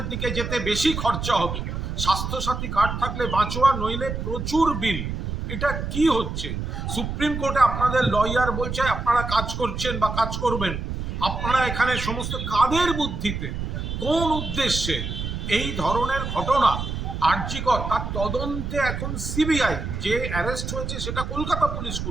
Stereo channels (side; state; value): right; noise; rumble, 4 dB below the sound